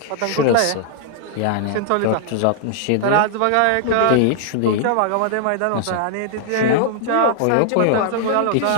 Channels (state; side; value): different; both; correlation -0.01